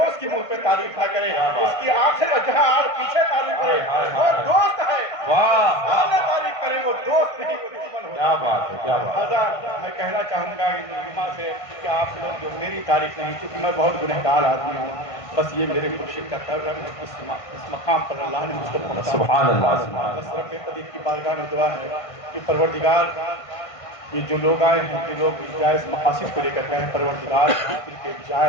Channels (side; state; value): right; late; 1.5 ms